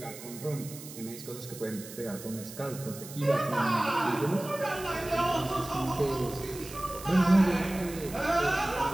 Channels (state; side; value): noise; right; hiss, 14 dB below the sound